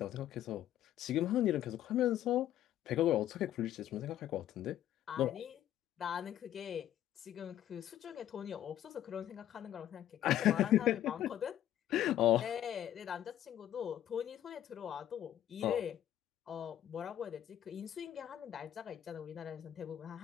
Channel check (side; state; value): right; quieter; 11.8 dB